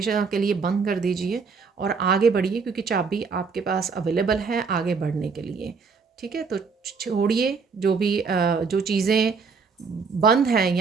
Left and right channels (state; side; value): quieter; left; 5.2 dB